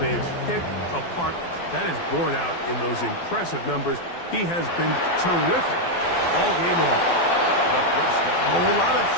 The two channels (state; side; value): late; right; 12 ms